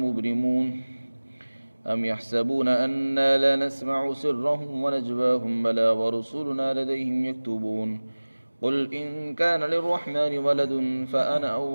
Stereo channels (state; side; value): inverted; both; correlation -1.00